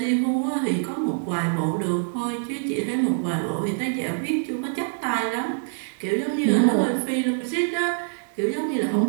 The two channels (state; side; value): silent; left; digital silence